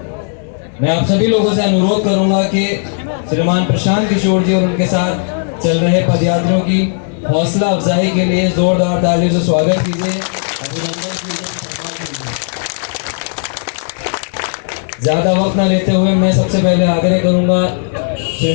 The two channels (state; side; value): silent; right; digital silence